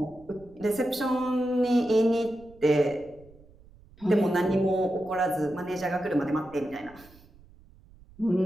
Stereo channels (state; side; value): noise; right; rumble, 25 dB below the sound